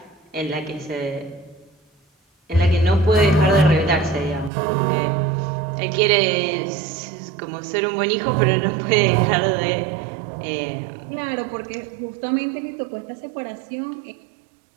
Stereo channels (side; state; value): left; drops out; at 4.5 s